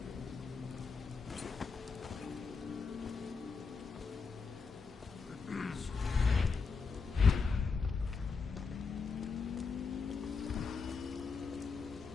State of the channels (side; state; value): right; quieter; 4.9 dB